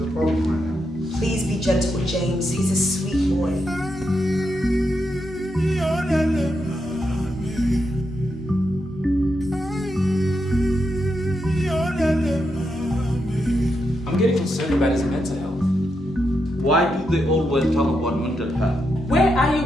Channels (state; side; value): normal; both; correlation 0.83